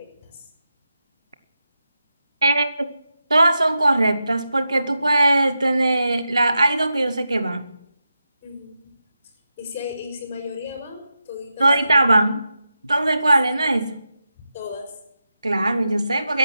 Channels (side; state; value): both; inverted; correlation -0.89